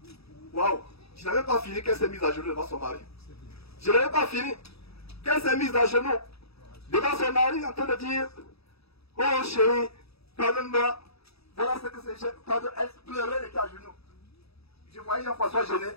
Waouh, je n'avais pas fini qu'elle s'est mise à genoux devant son mari. Je n'avais pas fini qu'elle s'est mise à genoux devant son mari en train de dire, oh chérie, pardonne-moi. Voilà ce que c'est. Elle pleurait, elle était à genoux. Je voyais Jean-François gêné,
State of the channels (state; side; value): late; right; 0.78 ms